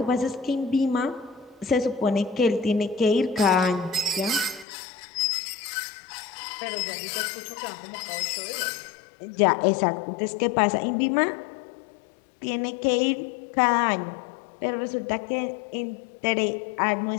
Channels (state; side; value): drops out; right; at 4.7 s